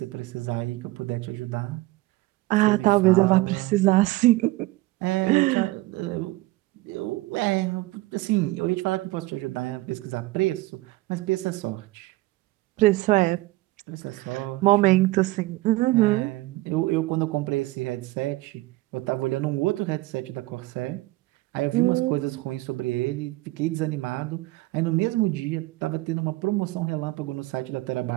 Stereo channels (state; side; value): quieter; left; 19.5 dB